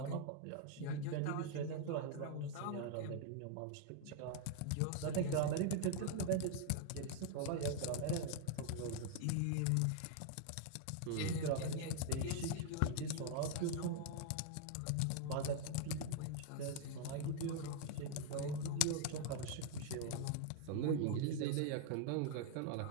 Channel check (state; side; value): different; both; correlation 0.00